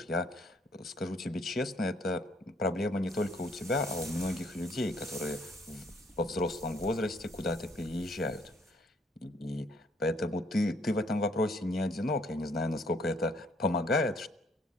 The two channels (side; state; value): both; normal; correlation 0.66